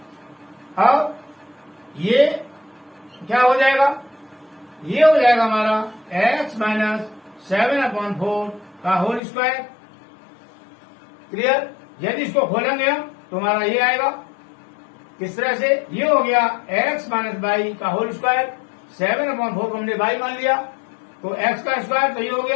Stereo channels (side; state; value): right; drops out; at 9.2 s